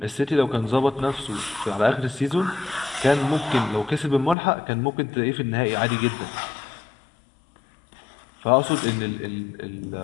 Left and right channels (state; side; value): drops out; right; at 4.4 s